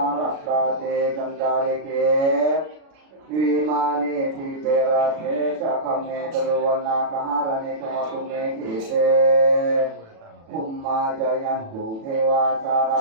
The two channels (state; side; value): late; left; 36 ms